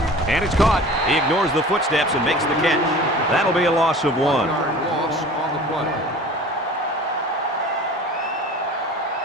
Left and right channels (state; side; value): normal; both; correlation 0.41